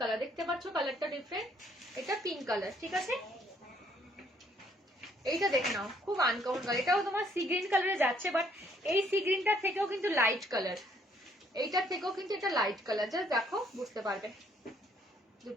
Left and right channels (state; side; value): normal; both; correlation 0.66